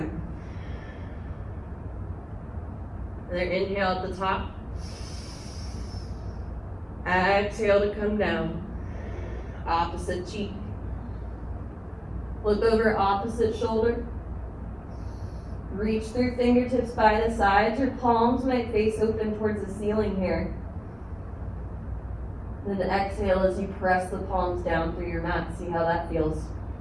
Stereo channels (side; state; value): both; identical; correlation 1.00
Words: Another inhale at the top. Exhale to come down. Opposite cheek. Look over opposite shoulder. Reach through fingertips by the sides. Your palms might face open towards the ceiling here. Then exhale as you press the palms down through your mat. See how that feels.